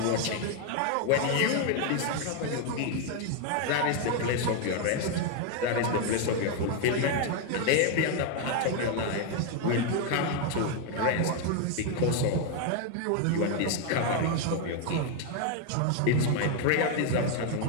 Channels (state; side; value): different; both; correlation 0.01